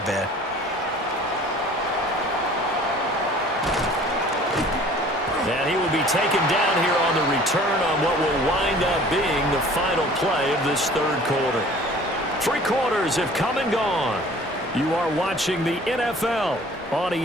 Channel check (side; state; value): both; normal; correlation 0.49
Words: bad. And he will be taken down here on the return on what will wind up being the final play of this third quarter. 3 quarters have come and gone. You are watching the NFL on